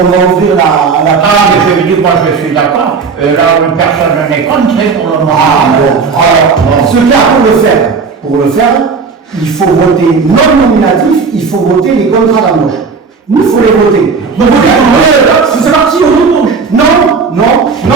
va ouvrir la Ah, mais je veux dire, moi je suis d'accord. Là, personne n'est contre pour le moment. Ah, bon. Alors, ce cas, pour le faire, il faut voter non nominatif, il faut voter les contrats d'embauche. Il faut les voter. Donc, c'est parti au nom. Non.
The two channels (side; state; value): left; quieter; 5.1 dB